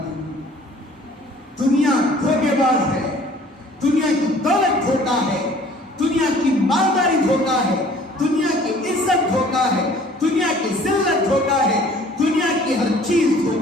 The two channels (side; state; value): both; normal; correlation 0.53